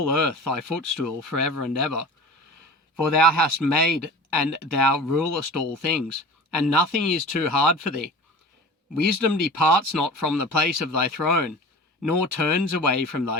earth thy footstool forever and ever. For thou hast made, and thou rulest all things, and nothing is too hard for thee. Wisdom departs not from the place of thy throne, nor turns away from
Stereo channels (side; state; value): both; normal; correlation 0.37